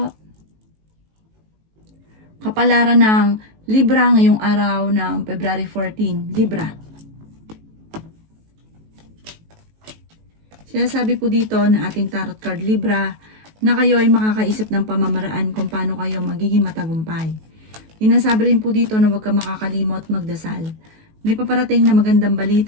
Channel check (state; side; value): late; left; 19 ms